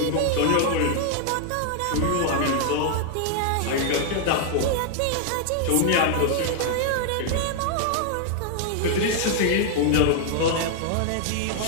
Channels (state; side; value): different; both; correlation 0.00